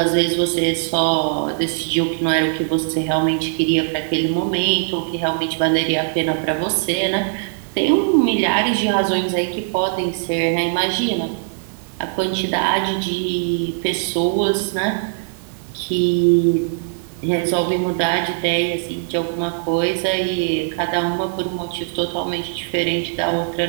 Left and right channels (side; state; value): left; silent; digital silence